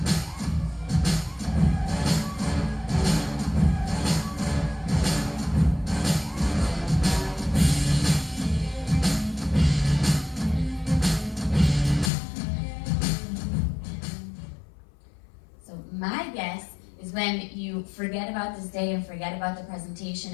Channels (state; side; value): drops out; right; at 12.1 s